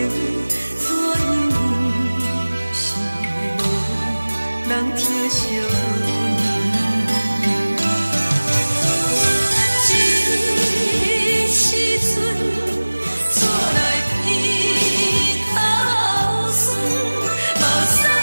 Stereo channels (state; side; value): inverted; both; correlation -1.00